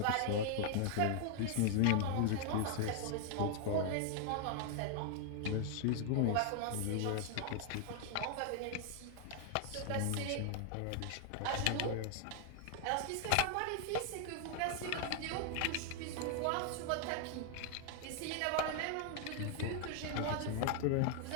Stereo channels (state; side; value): different; both; correlation 0.00